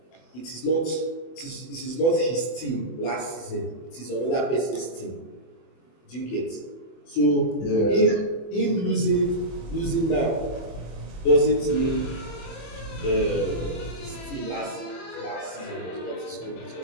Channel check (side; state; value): right; late; 24 ms